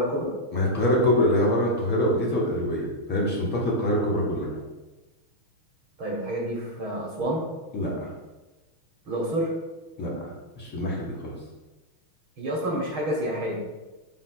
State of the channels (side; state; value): left; late; 6.3 ms